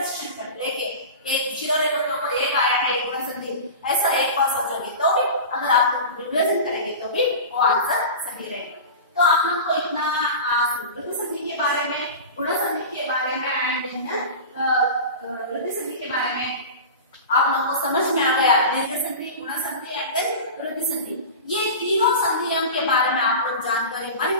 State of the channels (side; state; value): both; inverted; correlation -0.31